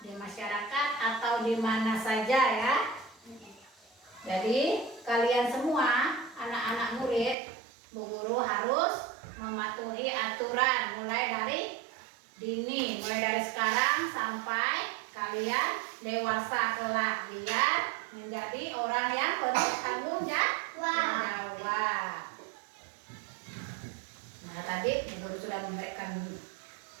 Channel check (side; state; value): left; drops out; at 7.4 s